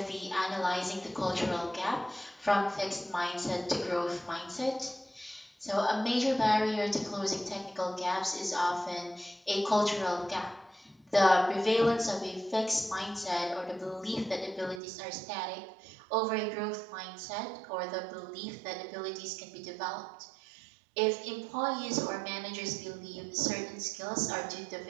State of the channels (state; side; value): drops out; left; at 14.8 s